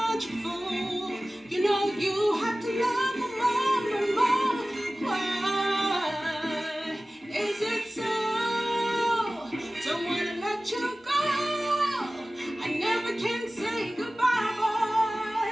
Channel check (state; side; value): normal; both; correlation 0.97